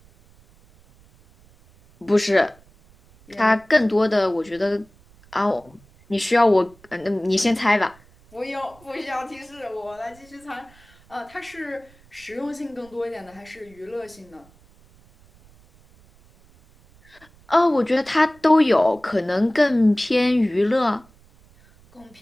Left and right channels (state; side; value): noise; right; rumble, 28 dB below the sound